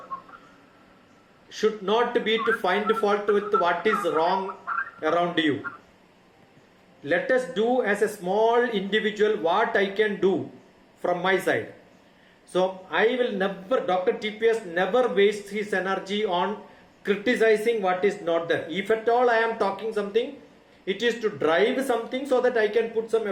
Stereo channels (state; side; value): identical; both; correlation 1.00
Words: should not be to find fault with what is wrong around you. Let us do as a small individual what I can do from my side. So I will never, Dr. TPS never wastes his energy on criticizing what is not there. If at all I am talking something, it is to drive something so that I can put some